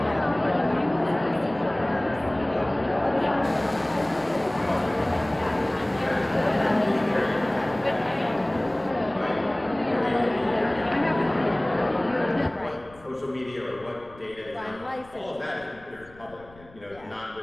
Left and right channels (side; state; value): left; noise; rumble, 24 dB below the sound